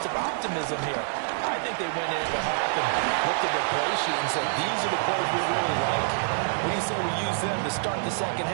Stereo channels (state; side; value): silent; left; digital silence